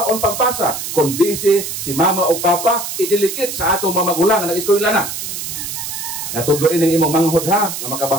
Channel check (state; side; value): noise; right; hiss, 6 dB below the sound